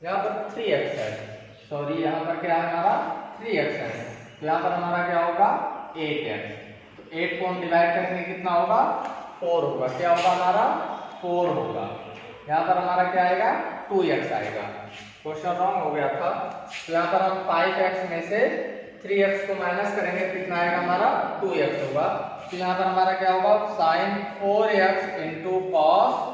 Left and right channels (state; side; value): identical; both; correlation 1.00